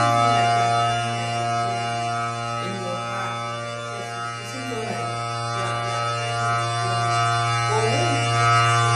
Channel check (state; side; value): identical; both; correlation 1.00